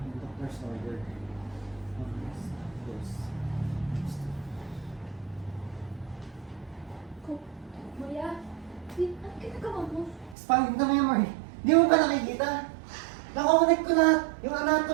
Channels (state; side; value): drops out; left; at 10.4 s